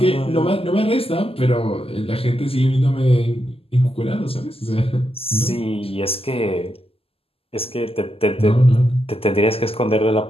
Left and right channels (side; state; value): right; late; 0.28 ms